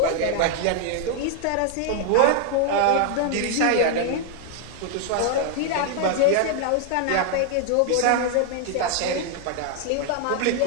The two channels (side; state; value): both; different; correlation 0.00